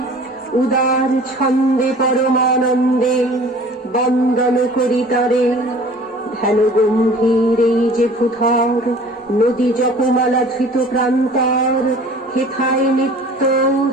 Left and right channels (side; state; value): both; normal; correlation 0.47